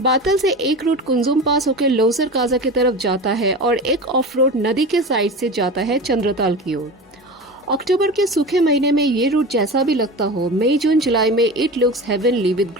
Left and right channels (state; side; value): normal; both; correlation 0.30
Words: बातल से एक root Kunzum पास होकर लोसर काजा की तरफ जाता है और एक of road नदी के साइड से जाता है चंद्रताल की ओर। अक्टूबर के सूखे महीने में ये रूट जैसा भी लगता हो, मई जून जुलाई में it looks heavenly with